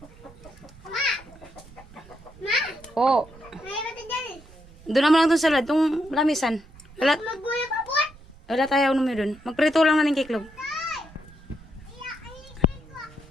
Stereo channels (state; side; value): noise; right; rumble, 22 dB below the sound